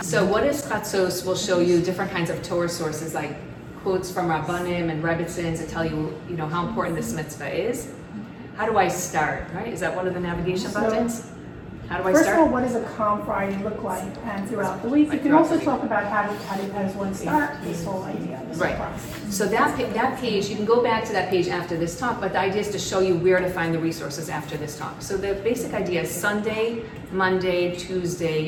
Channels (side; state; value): both; identical; correlation 1.00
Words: So what is Chatzos will show you different kinds of Torah sources, like quotes from Rabbanim and Rebbitzins that tell you, you know, how important this mitzvah is. How do I start, right? Is that one of the navigation buttons? How do I start? First of all, what does a calm Friday look like, and throughout the week? You can also talk about how does one start this whole idea, this whole process. So that page, you can go back to that page after this talk, but the idea is to show you where to find the resources after this talk. So the basic idea is Sunday, Monday, Tuesday,